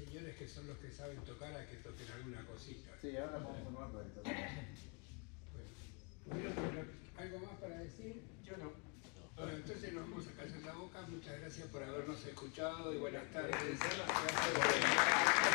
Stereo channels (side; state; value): right; quieter; 34.6 dB